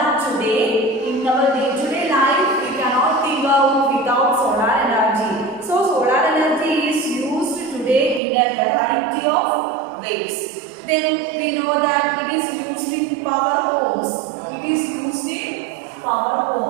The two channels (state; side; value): drops out; left; at 8.2 s